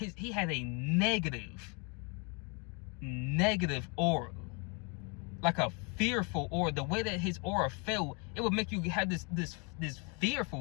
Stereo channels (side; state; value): right; quieter; 33.2 dB